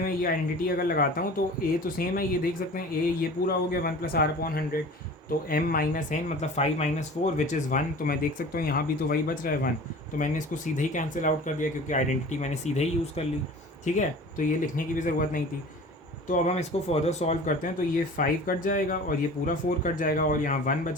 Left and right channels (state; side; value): normal; both; correlation 0.41